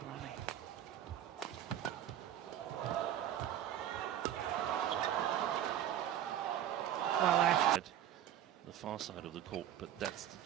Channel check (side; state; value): left; quieter; 10.9 dB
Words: rally. Well, after The far side of the court, but that's the